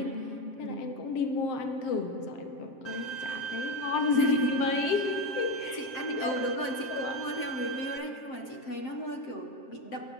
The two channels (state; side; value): late; right; 7.6 ms